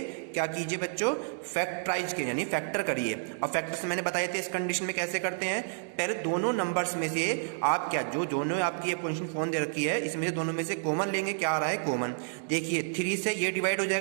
क्या कीजिए बच्चों, फैक्टराइज के यानी फैक्टर करिए। अब फैक्टर्स मैंने बताए थे इस कंडीशन में कैसे करते हैं, पहले दोनों नंबर्स में से आप क्या, जो दोनों आपकी ये पोजीशन फोन दे रखी है, इसमें से दोनों में से कॉमन लेंगे। क्या आ रहा है कॉमन, देखिए 3 से ये डिवाइड हो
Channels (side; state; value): left; silent; digital silence